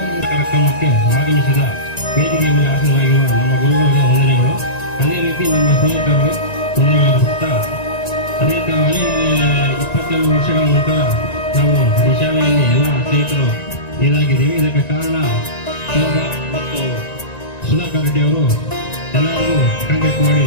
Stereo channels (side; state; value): right; late; 1.9 ms